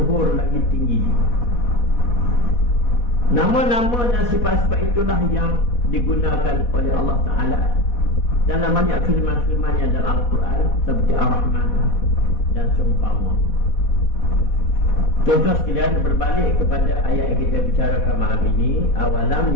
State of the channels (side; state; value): right; late; 4.1 ms